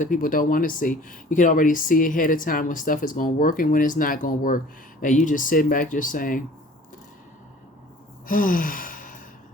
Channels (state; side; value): normal; both; correlation 0.48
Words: people don't want to see. You can already see ahead of time when stuff is going to work and when it's not going to work. And you just sitting back just saying,